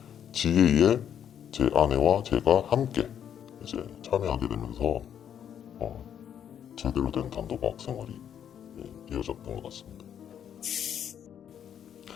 지혜에 제 아내와 제가 함께 이제 참여하게 되면서 제대로 된 단도박 생활이 이어졌던 것 같습니다.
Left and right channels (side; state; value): right; quieter; 9.1 dB